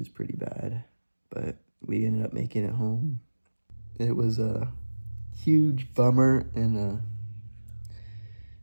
pretty bad, but we ended up making it home. It was a huge bummer and a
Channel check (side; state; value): both; inverted; correlation -1.00